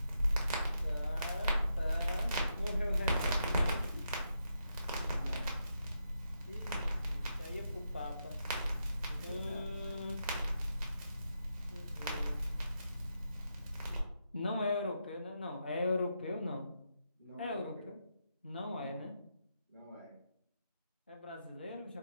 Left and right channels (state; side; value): inverted; both; correlation -0.83